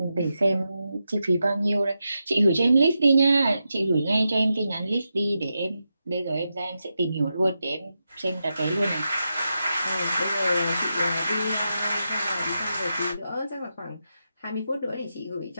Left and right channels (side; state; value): both; inverted; correlation -0.88